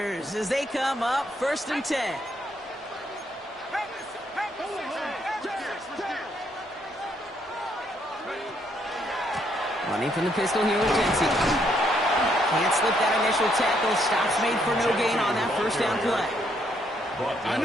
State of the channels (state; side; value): normal; both; correlation 0.72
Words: as they come up first and 10. Running from the pistol here with Jency. Can't slip that initial tackle. Stops made for no gain on that first down play. I